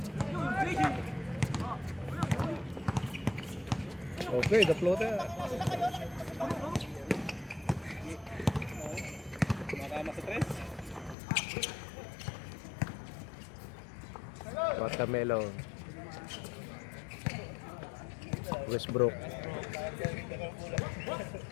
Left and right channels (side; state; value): right; drops out; at 11.2 s